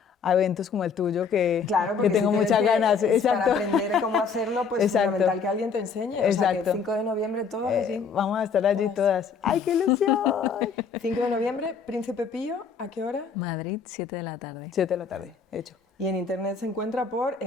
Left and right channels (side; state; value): right; quieter; 5.8 dB